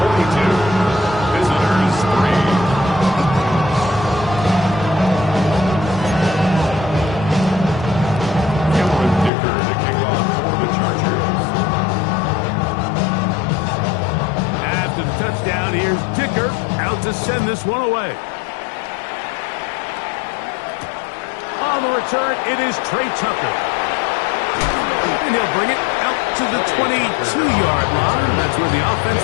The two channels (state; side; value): drops out; right; at 9.3 s